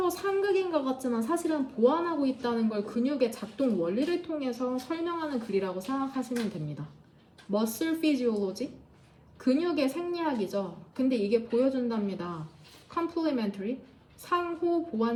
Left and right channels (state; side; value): identical; both; correlation 1.00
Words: 상극인 것 같지만 사실은 보완하고 있다는 걸 근육의 작동 원리를 통해서 설명하는 글이라고 생각하시면 됩니다. muscle physiology, 근육의 생리학이죠. 근데 이게 보여준답니다. complementary, 상호